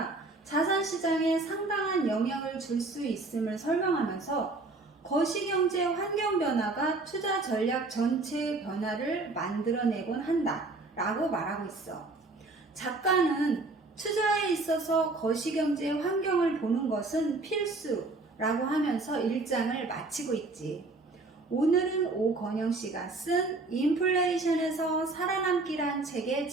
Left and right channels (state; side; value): quieter; left; 3.3 dB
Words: 자산시장에 상당한 영향을 줄 수 있음을 설명하면서 거시경제 환경 변화가 투자 전략 전체의 변화를 만들어내곤 한다 라고 말하고 있어. 작가는 투자에 있어서 거시경제 환경을 보는 것은 필수라고 하면서 1장을 마치고 있지. 오늘은 오건영 씨가 쓴 인플레이션에서 살아남기란 책의